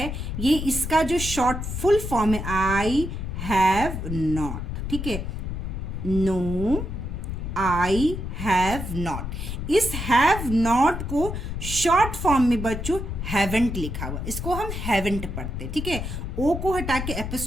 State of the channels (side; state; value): left; noise; rumble, 5 dB below the sound